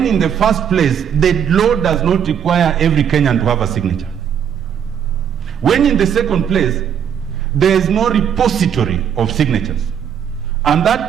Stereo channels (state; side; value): quieter; left; 8.4 dB